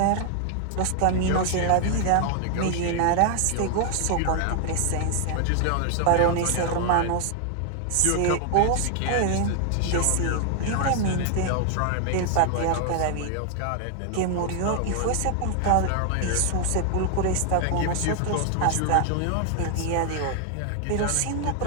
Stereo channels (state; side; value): different; both; correlation 0.00